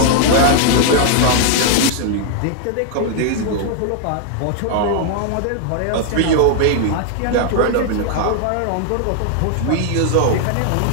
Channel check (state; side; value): different; both; correlation 0.00